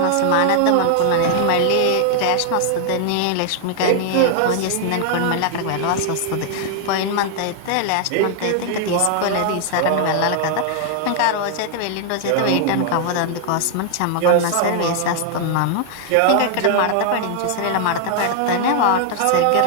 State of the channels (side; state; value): both; different; correlation 0.00